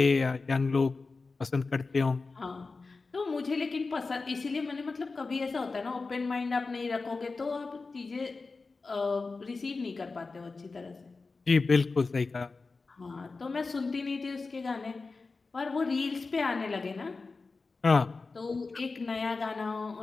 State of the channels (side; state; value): right; quieter; 4.0 dB